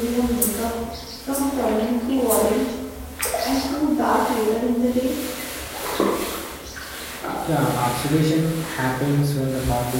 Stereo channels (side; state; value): both; identical; correlation 1.00